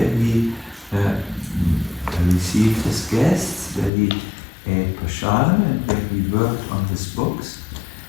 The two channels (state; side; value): drops out; right; at 3.9 s